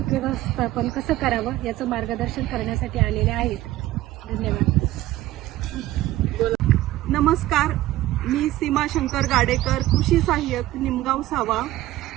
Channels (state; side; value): quieter; left; 15.6 dB